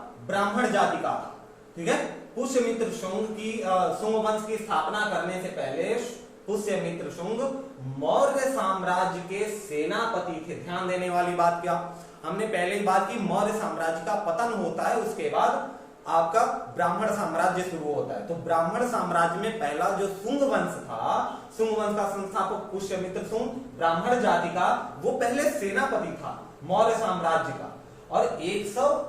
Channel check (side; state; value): both; identical; correlation 1.00